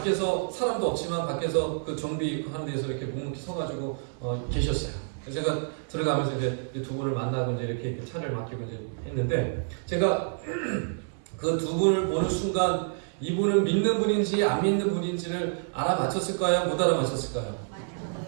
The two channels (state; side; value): silent; left; 59 dB below the other